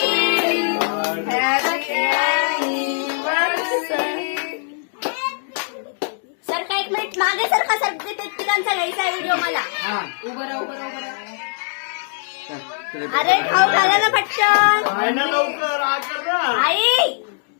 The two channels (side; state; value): right; silent; 58 dB below the other